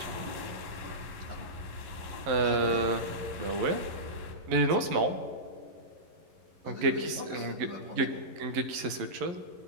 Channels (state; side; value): late; left; 11 ms